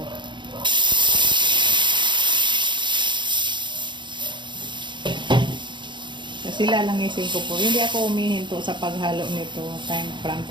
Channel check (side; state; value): left; late; 0.23 ms